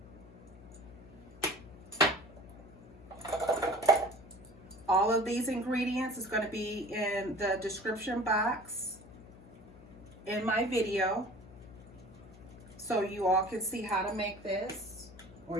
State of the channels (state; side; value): noise; left; hum, 19 dB below the sound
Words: All of these ingredients is going to be in the description box in my video, so you all can see how to make this, or